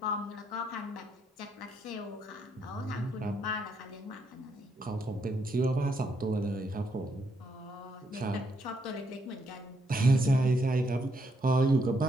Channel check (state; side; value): normal; both; correlation 0.75